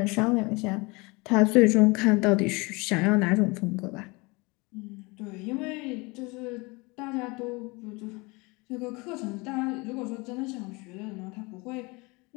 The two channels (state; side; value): quieter; right; 26.2 dB